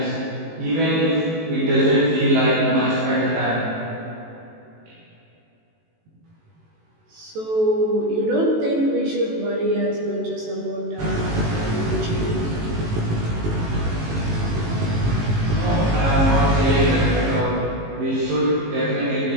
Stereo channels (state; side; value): late; left; 18 ms